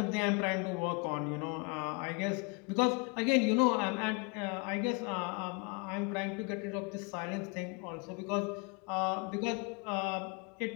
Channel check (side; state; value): right; quieter; 30.1 dB